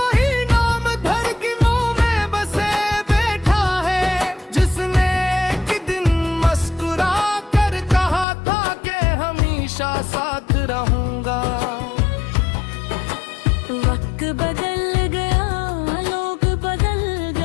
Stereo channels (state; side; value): drops out; right; at 8.2 s